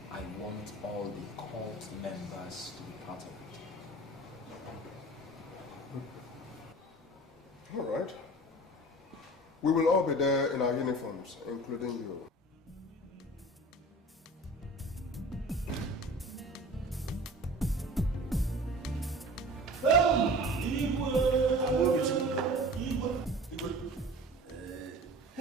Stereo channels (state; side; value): normal; both; correlation 0.40